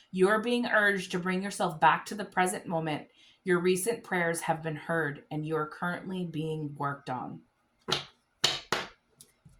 you are being urged to bring yourself back to the present moment. Your recent prayers have been heard, and you are currently being worked on.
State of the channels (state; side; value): identical; both; correlation 1.00